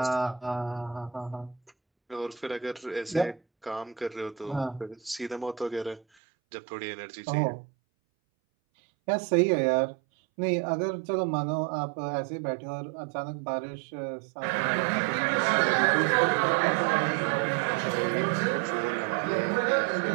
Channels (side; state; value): left; drops out; at 6.0 s